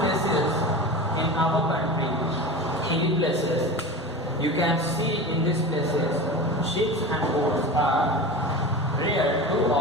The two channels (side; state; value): both; normal; correlation 0.29